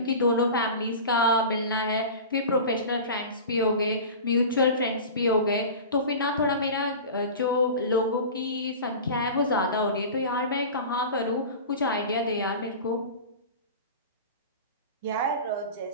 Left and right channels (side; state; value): both; inverted; correlation -0.33